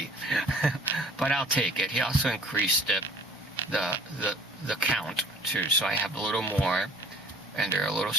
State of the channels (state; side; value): normal; both; correlation 0.51